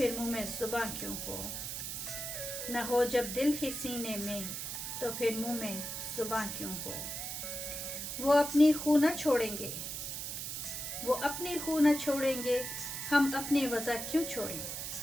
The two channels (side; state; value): right; noise; hiss, 5 dB below the sound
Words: मुँह में ज़ुबां क्यों हो, न हो जब दिल ही सीने में तो फिर मुँह में ज़ुबां क्यों हो। वो अपनी खू न छोड़ेंगे, वो अपनी खू न छोड़ेंगे, हम अपनी वज़ह क्यों छोड़ें।